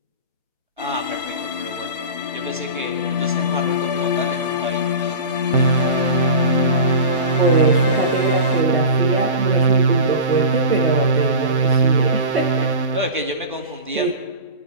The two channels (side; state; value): both; inverted; correlation -0.31